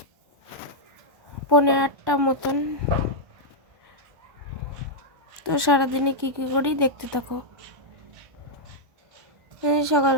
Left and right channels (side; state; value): left; late; 1.1 ms